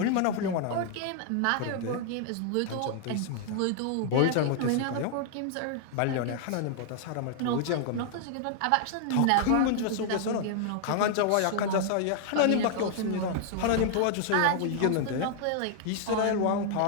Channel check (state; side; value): different; both; correlation 0.00